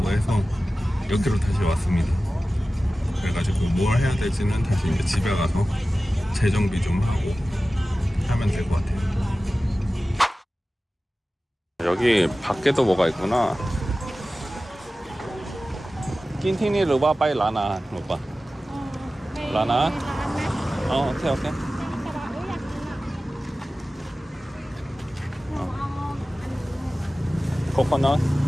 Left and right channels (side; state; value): both; normal; correlation 0.96